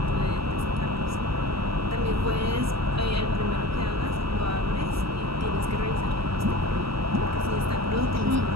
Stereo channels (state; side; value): late; left; 0.76 ms